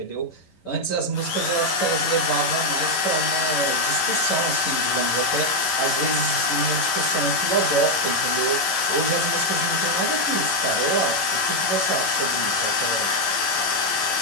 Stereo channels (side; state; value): right; late; 11 ms